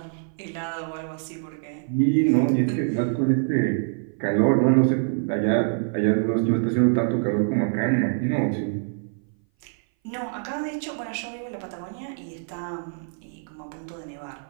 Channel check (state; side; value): silent; left; 58 dB below the other